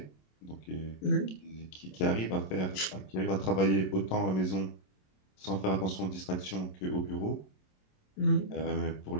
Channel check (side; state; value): right; late; 27 ms